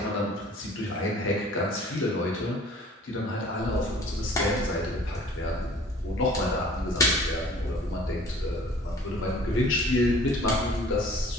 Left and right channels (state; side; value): normal; both; correlation 0.50